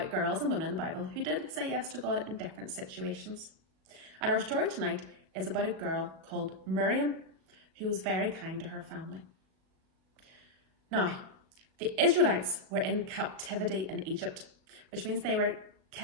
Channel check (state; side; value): late; left; 37 ms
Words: girls and women in the Bible who did say yes to God in different situations. And our story tonight is about a girl called Miriam who was very kind to her family. Now, the Israelites were in captivity in Egypt, which means they were